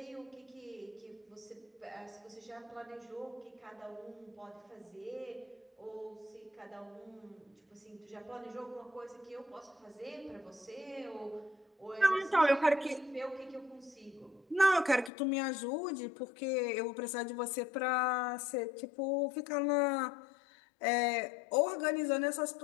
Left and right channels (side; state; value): right; drops out; at 15.1 s